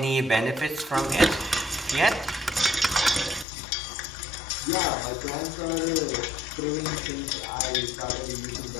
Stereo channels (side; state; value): right; drops out; at 3.5 s